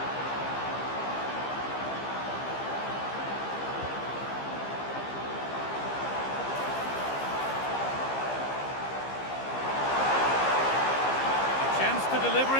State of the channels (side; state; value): right; late; 15 ms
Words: Chance to deliver